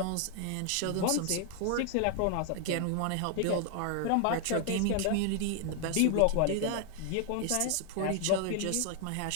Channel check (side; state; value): both; different; correlation 0.00